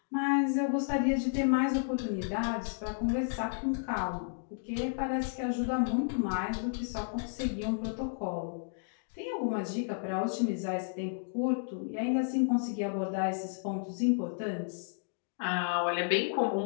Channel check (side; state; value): right; silent; digital silence